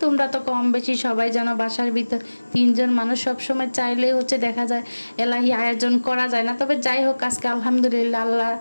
তোমরা তো কম বেশি সবাই জানো বাসার ভিতর তিনজন মানুষ, সবসময় চাইলেই হচ্ছে দেখা যায় এলাহি আয়োজন করা যায় না। তবে যাই হোক, আজকে আলহামদুলিল্লাহ আল্লাহ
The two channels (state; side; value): inverted; both; correlation -1.00